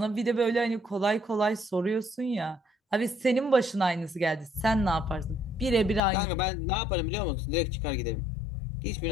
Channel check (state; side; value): drops out; right; at 6.0 s